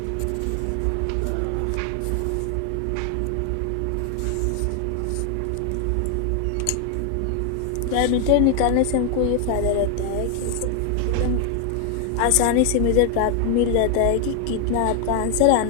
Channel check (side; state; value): both; different; correlation 0.00